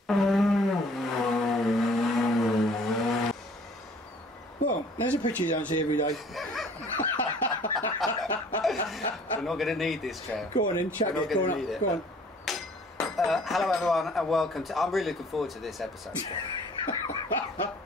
Well, there's a picture you don't see every day. We're not going to need this, Trev. Go on in, chuck it. Go on. Go on. Hello everyone and welcome to... I'm really looking forward to this episode.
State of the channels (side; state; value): both; normal; correlation 0.54